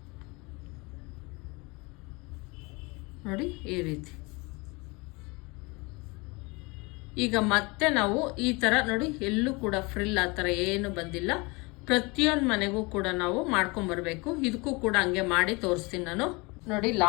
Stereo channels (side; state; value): right; quieter; 26.5 dB